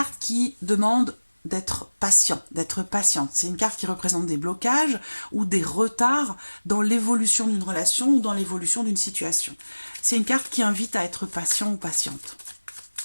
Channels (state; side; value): inverted; both; correlation -1.00